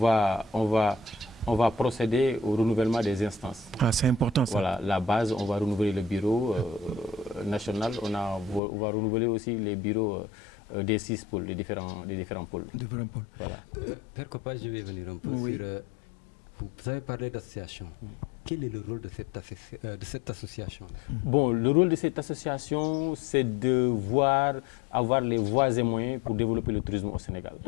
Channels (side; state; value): right; drops out; at 8.6 s